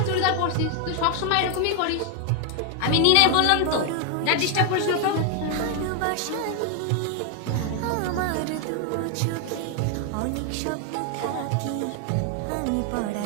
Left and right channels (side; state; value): both; different; correlation 0.01